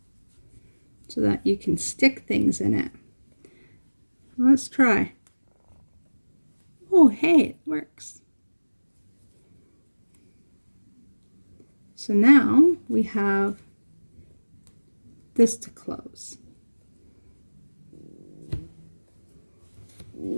so that you can stick things in it. Let's try. Oh, hey, it works. So now we have this to close.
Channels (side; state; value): both; inverted; correlation -1.00